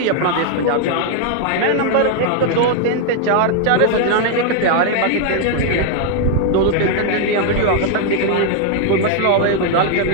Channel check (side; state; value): both; different; correlation 0.00